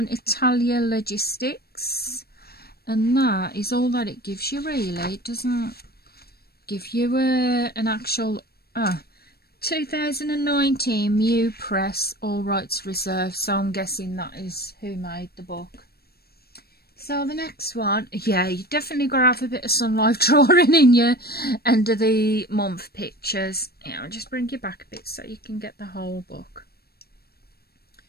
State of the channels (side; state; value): right; late; 0.46 ms